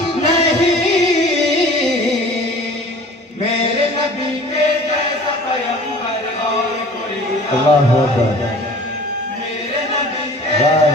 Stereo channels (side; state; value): both; normal; correlation 0.45